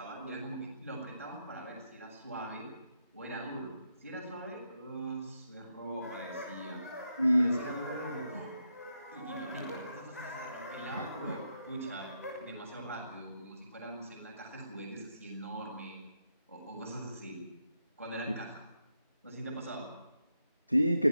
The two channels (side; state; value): both; inverted; correlation -0.82